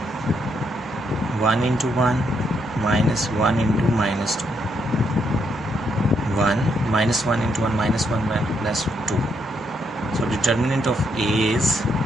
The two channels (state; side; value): normal; both; correlation 0.76